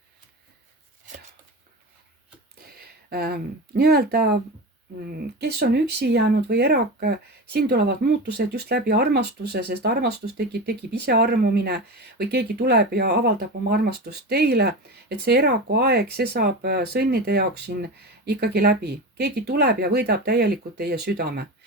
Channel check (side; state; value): both; normal; correlation 0.25